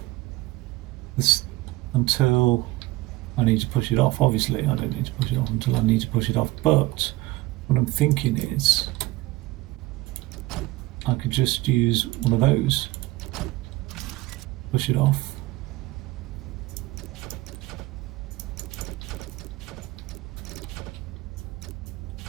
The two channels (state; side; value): quieter; left; 18.8 dB